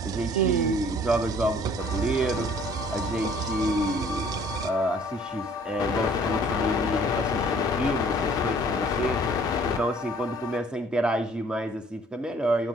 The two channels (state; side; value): normal; both; correlation 0.56